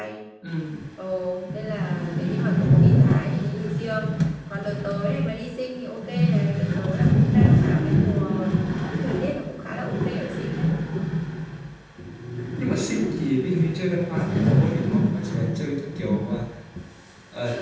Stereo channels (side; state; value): both; identical; correlation 1.00